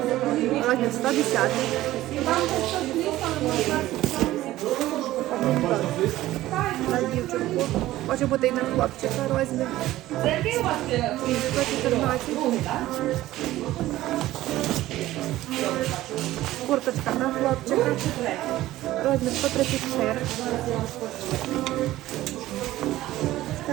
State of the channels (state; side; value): quieter; left; 15.6 dB